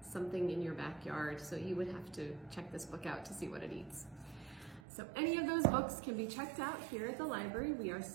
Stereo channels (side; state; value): left; drops out; at 4.8 s